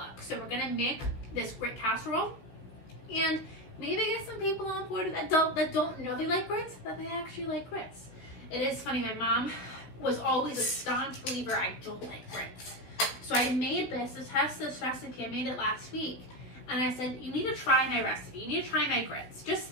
So we're gonna make this grit casserole and maybe get some people on board that don't know they like grits, that they actually like grits. It is funny, my mom was always a staunch believer I don't like grits. So I made this to test this recipe. I made it last week, and I said, you need to try my recipe. You need to try my grits, just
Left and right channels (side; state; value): right; late; 16 ms